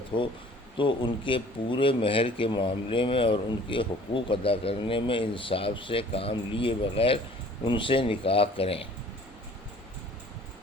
ہو تو ان کے پورے مہر کے معاملے میں اور ان کے حقوق ادا کرنے میں انصاف سے کام لیے بغیر ان سے نکاح کریں۔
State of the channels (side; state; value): both; normal; correlation 0.51